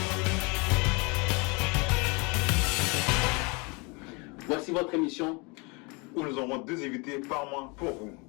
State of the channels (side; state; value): right; quieter; 29.6 dB